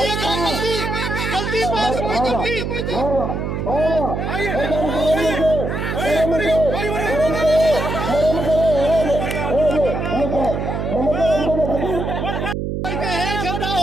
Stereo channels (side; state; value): right; noise; hum, 2 dB below the sound